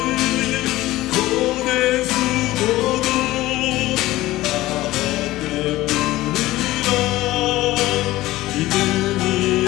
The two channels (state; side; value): quieter; right; 17.1 dB